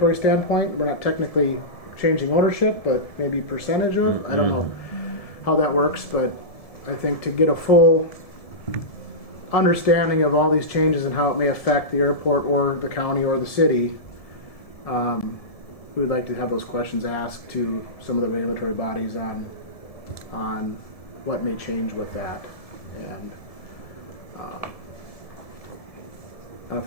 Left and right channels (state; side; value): late; right; 1.7 ms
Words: standpoint. We're not technically changing ownership, but maybe percentage of. I don't know how that works, but I think to get a full understanding of all these changes and how it may affect the airport or the county or the city, we would like to have those questions asked to some of the regulatory bodies on what may change with that. And I don't know if